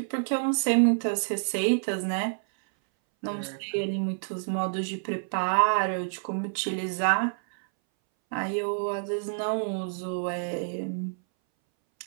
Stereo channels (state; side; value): silent; left; 59 dB below the other